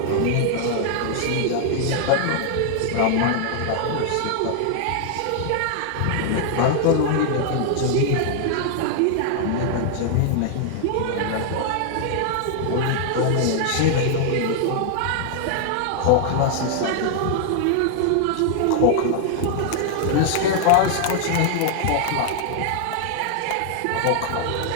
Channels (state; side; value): different; both; correlation 0.00